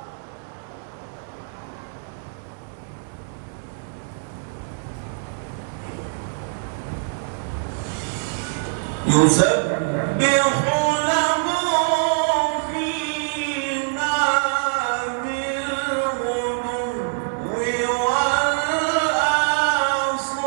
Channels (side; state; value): left; silent; 63 dB below the other